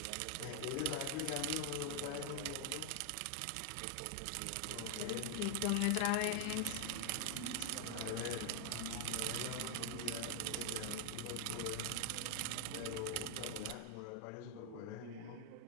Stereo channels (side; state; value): both; different; correlation 0.00